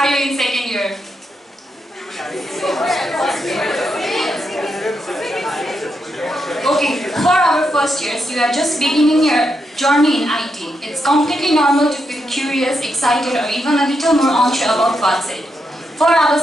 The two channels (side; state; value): both; normal; correlation 0.82